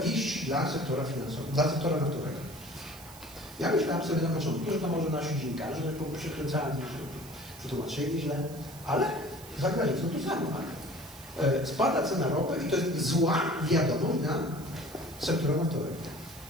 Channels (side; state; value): right; noise; hiss, 19 dB below the sound